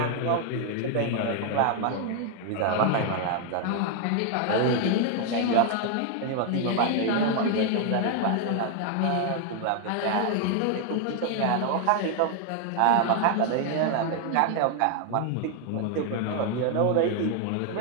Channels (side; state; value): both; different; correlation 0.00